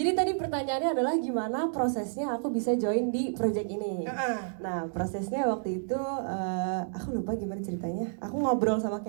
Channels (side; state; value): left; silent; digital silence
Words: tadi pertanyaannya adalah gimana prosesnya aku bisa join di project ini. Nah, prosesnya waktu itu aku lupa gimana ceritanya. Aku ngobrol sama